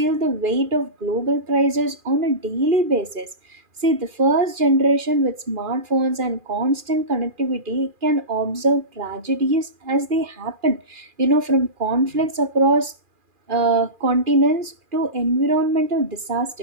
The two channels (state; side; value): late; left; 2.4 ms